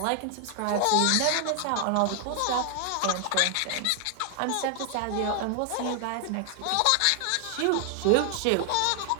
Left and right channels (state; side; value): different; both; correlation 0.00